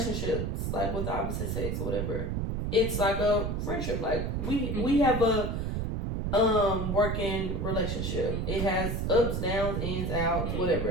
like with the opposite sex or whatever, it's like a friendship. Like we have a working relationship. It has ups, downs, ins, outs,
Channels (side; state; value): right; noise; rumble, 1 dB below the sound